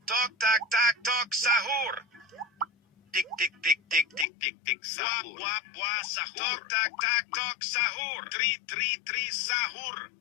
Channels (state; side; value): drops out; right; at 4.2 s